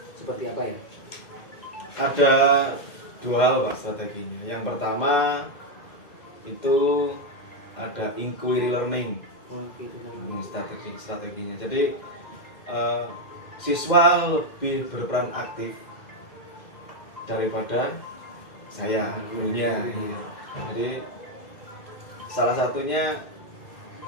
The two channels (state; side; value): late; right; 2.1 ms